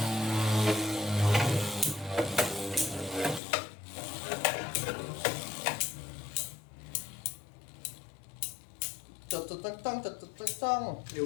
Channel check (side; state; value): right; drops out; at 3.4 s